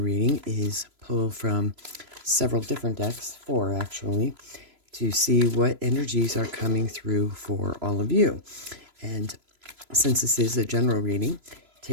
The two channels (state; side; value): late; left; 3.0 ms